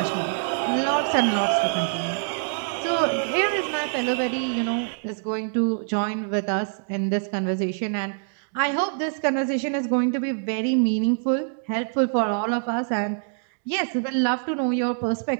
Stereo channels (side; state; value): left; silent; digital silence